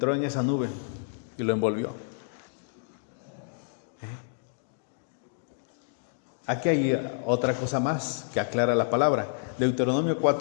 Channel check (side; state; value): right; silent; digital silence